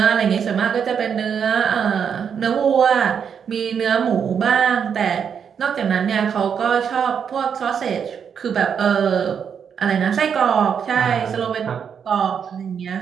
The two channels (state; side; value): quieter; left; 7.3 dB